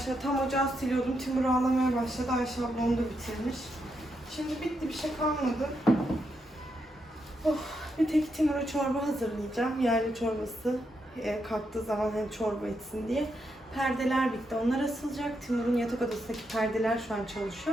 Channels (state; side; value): normal; both; correlation 0.82